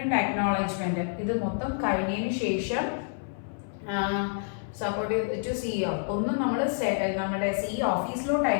അക്നോളജ്മെന്റ് ഇത് മൊത്തം കഴിഞ്ഞതിന് ശേഷം സപ്പോർട്ട് ടു CEO ഒന്നും നമ്മൾ നമ്മുടെ CEO ഓഫീസിലോട്ട്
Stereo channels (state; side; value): silent; right; 57 dB below the other